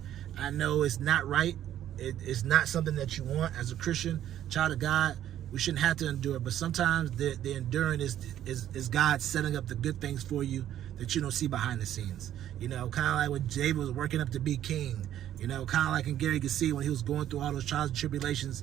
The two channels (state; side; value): quieter; left; 11.5 dB